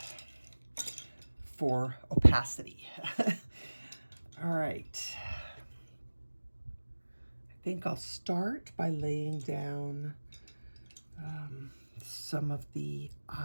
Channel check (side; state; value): both; inverted; correlation -1.00